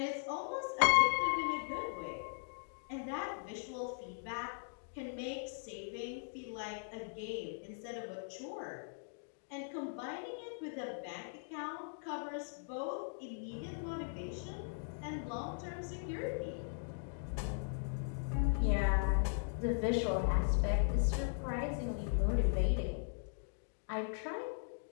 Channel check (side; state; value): right; silent; digital silence